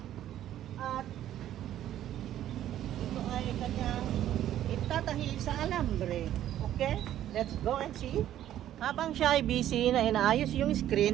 At ito ay kanyang itatahi sa alambre. Okay? Let's go and see. Habang siya ay busy na inaayos yung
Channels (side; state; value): left; quieter; 12.0 dB